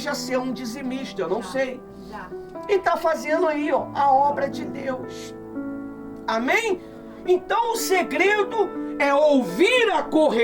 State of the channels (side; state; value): both; identical; correlation 1.00